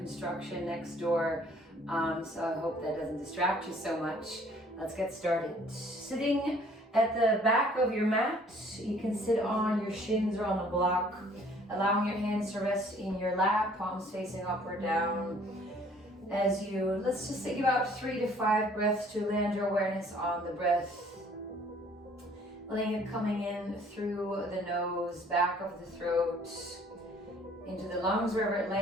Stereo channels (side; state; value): both; normal; correlation 0.57